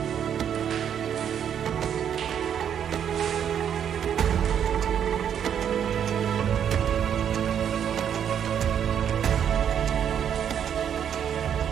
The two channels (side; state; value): left; quieter; 8.8 dB